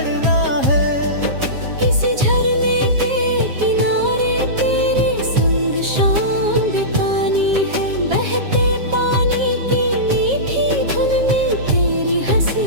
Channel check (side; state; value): left; late; 7.4 ms